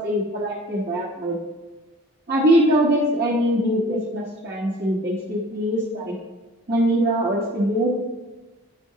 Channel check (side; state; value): both; normal; correlation 0.47